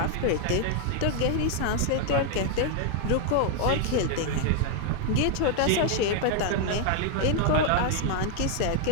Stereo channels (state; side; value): different; both; correlation 0.00